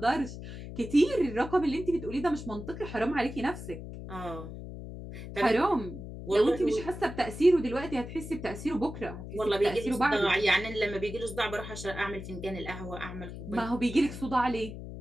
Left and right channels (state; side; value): noise; left; hum, 10 dB below the sound